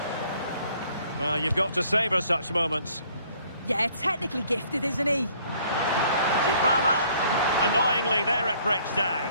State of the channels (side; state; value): both; inverted; correlation -0.61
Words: Well, you've got to savour such moments. Yeah, technically gifted, isn't he? Dybala. Annoyingly, there it breaks down.